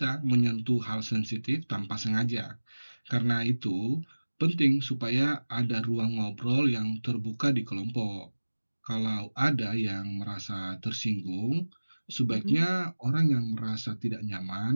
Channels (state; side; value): inverted; both; correlation -1.00